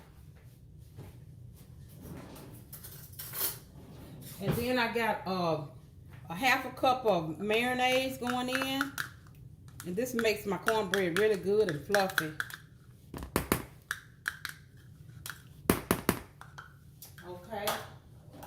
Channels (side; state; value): both; identical; correlation 1.00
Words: And then I got a 1/2 cup of mayonnaise going in, and this makes my cornbread really good and fluffy. Okay.